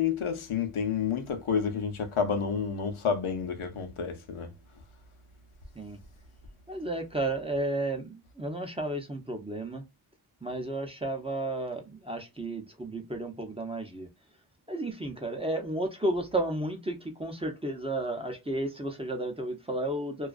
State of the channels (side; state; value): both; normal; correlation 0.22